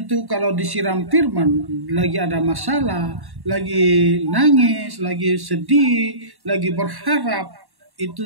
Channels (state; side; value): late; left; 1.1 ms